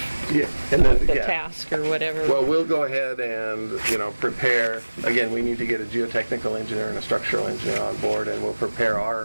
Yeah. And then the task or whatever. Well, we'll go ahead and, prepare, again, we need to get a geotechnical engineer and a structural engineer on board, and we'll prepare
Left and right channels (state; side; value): inverted; both; correlation -1.00